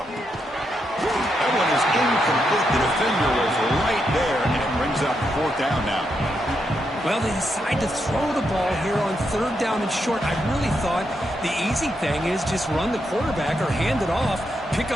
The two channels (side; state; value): both; normal; correlation 0.82